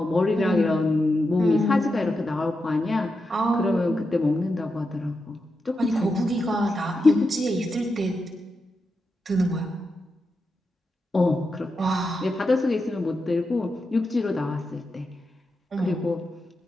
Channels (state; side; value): normal; both; correlation 0.87